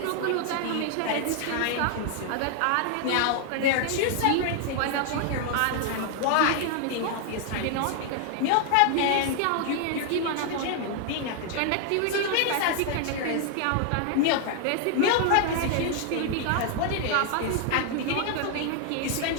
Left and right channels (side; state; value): both; different; correlation 0.00